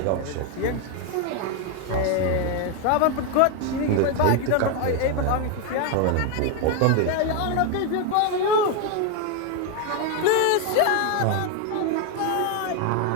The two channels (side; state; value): both; different; correlation 0.01